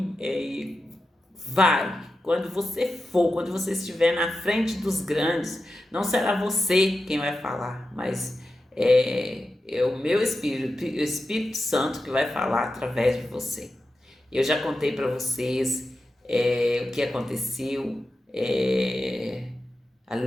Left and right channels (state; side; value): normal; both; correlation 0.91